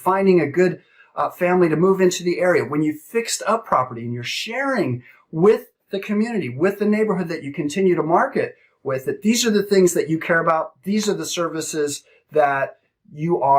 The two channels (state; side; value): identical; both; correlation 1.00